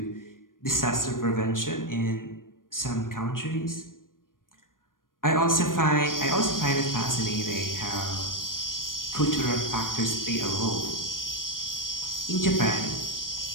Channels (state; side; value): late; right; 0.90 ms